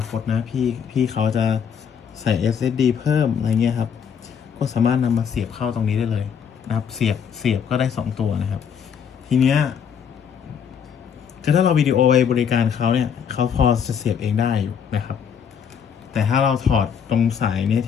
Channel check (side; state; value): right; quieter; 7.5 dB